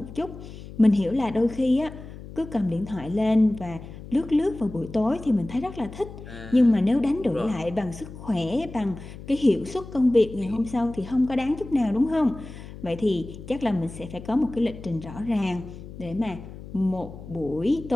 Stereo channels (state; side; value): noise; left; hum, 14 dB below the sound